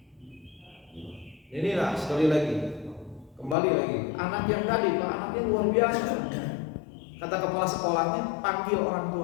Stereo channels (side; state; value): right; drops out; at 3.6 s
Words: Inilah sekali lagi, kembali lagi, anak yang tadi, Pak, anaknya luar biasa. Kata kepala sekolahnya, panggil orang